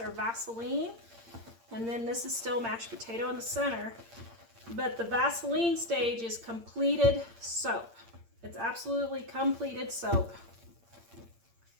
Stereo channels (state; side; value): late; left; 8.7 ms